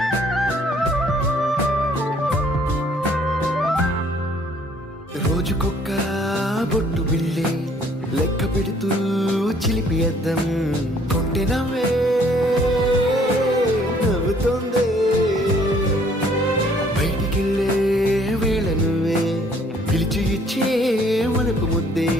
రోజుకొక్క బొట్టు బిళ్ళే లెక్క పెడుతూ చిలిపి అద్దం కొంటె నవ్వే నవ్వుతోందే బయటికెళ్ళే వేళ నువ్వే పిలిచి ఇచ్చే వనపు ముద్దే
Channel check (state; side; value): normal; both; correlation 0.60